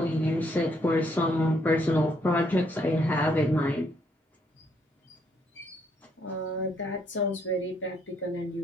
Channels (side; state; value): both; normal; correlation 0.71